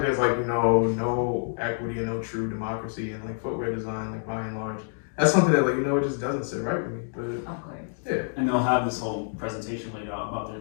there's like, no equity and no true democracy in like footwear design, like by and large. That's something that like, it just doesn't sit right with me. But Of course. yeah. and they'll have this whole presentation laid out about their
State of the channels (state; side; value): silent; right; digital silence